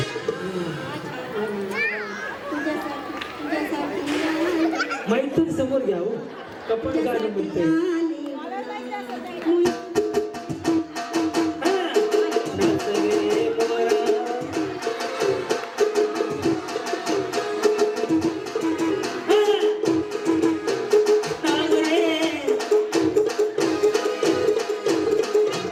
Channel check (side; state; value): both; identical; correlation 1.00